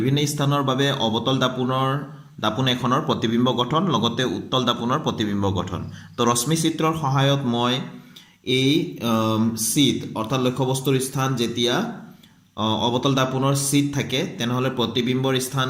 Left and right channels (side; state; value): both; identical; correlation 1.00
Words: স্থানৰ বাবে অৱতল দাপোন এখনৰ প্ৰতিবিম্ব গঠন, লগতে উত্তল দাপোনৰ প্ৰতিবিম্ব গঠন। তো ৰশ্মি চিত্ৰৰ সহায়ত মই এই চিট অৰ্থাৎ লক্ষ্যবস্তুৰ স্থান যেতিয়া অৱতল দাপোনৰ চিট থাকে তেনেহ'লে প্ৰতিবিম্বৰ স্থান